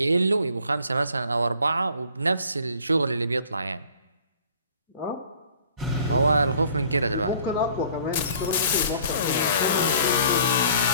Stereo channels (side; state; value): both; inverted; correlation -0.53